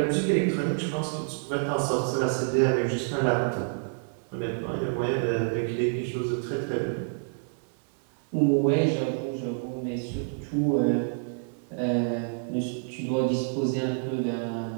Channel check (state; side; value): silent; left; 59 dB below the other